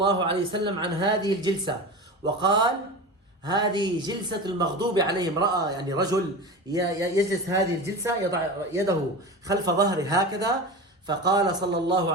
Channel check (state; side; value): normal; both; correlation 0.28